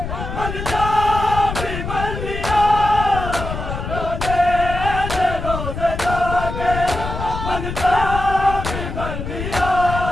मन जा भी मर लिया, लाने दे रोज़े जाके मन जा भी मर लिया,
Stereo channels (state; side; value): noise; left; rumble, 6 dB below the sound